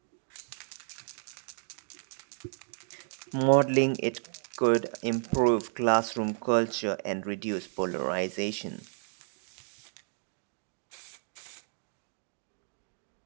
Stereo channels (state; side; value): silent; left; digital silence